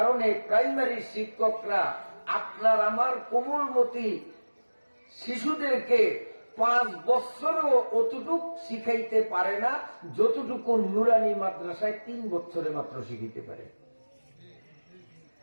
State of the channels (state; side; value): inverted; both; correlation -1.00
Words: প্রাইমারি শিক্ষকরা আপনার আমার কোমলমতি শিশুদেরকে 5 বছরও অতটুক শিখাইতে পারে না যতটুকু নুরানি মাদ্রাসায় 3 বছরে মাত্র শিখাইতে পারে।